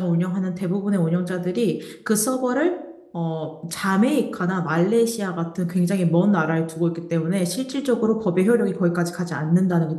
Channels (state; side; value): identical; both; correlation 1.00